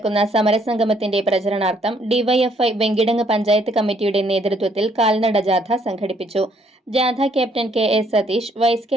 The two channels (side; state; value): both; normal; correlation 0.67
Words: സമരസംഗമത്തിന്റെ പ്രചരണാർത്ഥം DYFI Venkitangu panchayat കമ്മിറ്റിയുടെ നേതൃത്വത്തിൽ കാൽനട ജാഥ സംഘടിപ്പിച്ചു. ജാഥ captain K A. Satheesh, vice